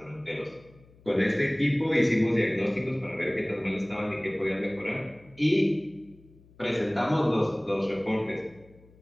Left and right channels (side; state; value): left; noise; hum, 27 dB below the sound